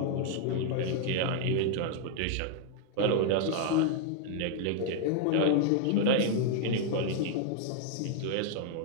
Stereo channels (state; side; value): different; both; correlation 0.00